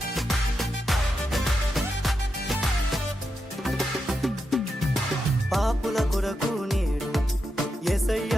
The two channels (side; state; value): both; normal; correlation 0.86